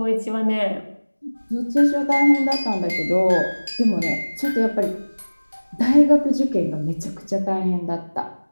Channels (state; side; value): inverted; both; correlation -1.00